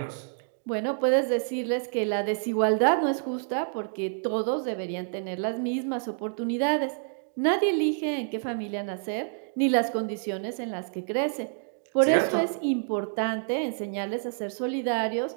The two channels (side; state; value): left; silent; digital silence